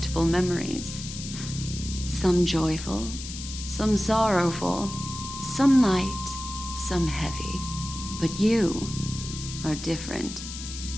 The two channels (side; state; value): left; noise; hiss, 10 dB below the sound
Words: memories. Some joyful, some sorrowful, some light, some heavy. But you are different.